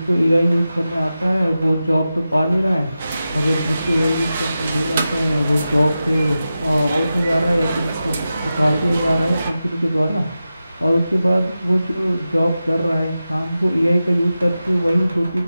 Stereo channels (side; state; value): both; inverted; correlation -0.92